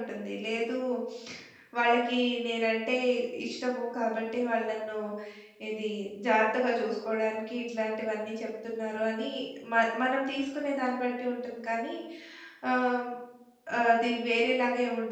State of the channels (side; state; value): both; identical; correlation 1.00